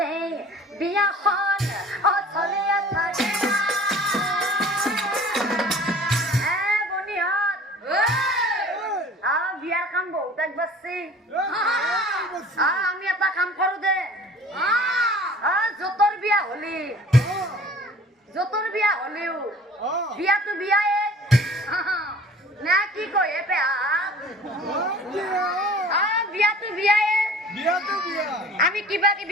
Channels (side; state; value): both; normal; correlation 0.47